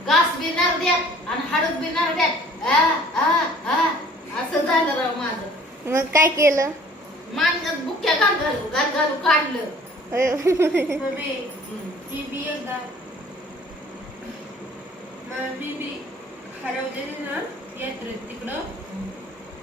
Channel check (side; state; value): both; normal; correlation 0.52